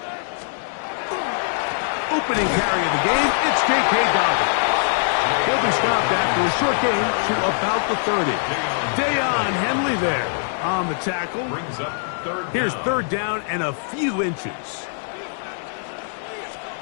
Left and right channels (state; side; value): silent; right; digital silence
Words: Opening carry of the game, it's J.K. Dobbins. He'll be stopped after a short gain to about the 30. Dayon Henley there on the tackle. Here's 3rd down and a few inches.